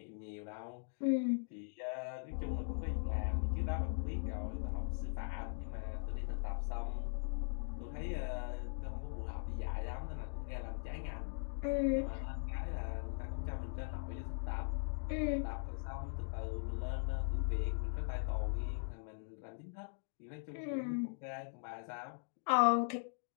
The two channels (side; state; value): right; silent; digital silence